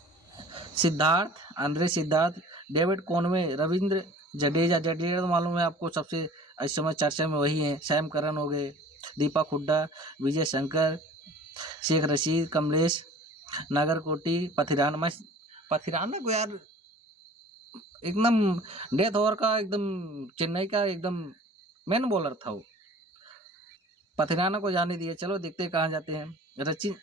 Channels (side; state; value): both; normal; correlation 0.46